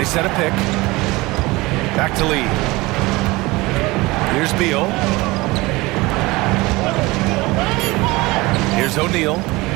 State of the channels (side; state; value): left; quieter; 21.7 dB